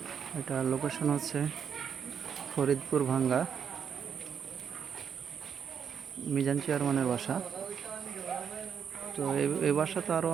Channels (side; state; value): left; quieter; 7.4 dB